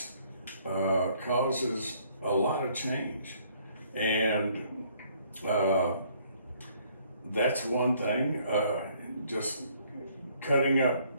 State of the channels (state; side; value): inverted; both; correlation -0.64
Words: causes a lot of change. And that's one thing, just cutting up